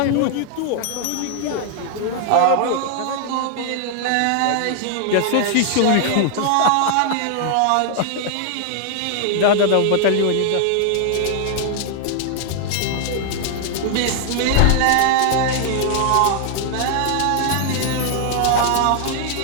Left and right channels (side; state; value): both; different; correlation 0.00